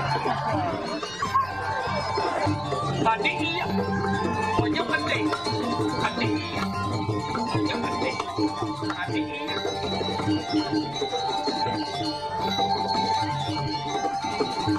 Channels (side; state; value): right; noise; rumble, 21 dB below the sound